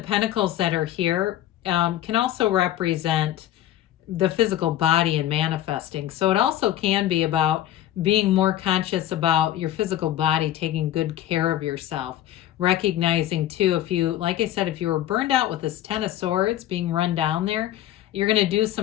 that are here, can also represent the physical body and manifesting. So it also can be about being more conscious about your physical body, taking good care of yourself, recognizing too, if you, like I said, if you were burned out with this Ten of Swords being run down there, you're going to do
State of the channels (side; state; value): right; quieter; 12.9 dB